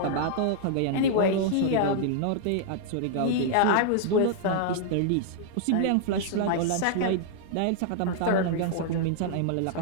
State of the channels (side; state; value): both; different; correlation -0.01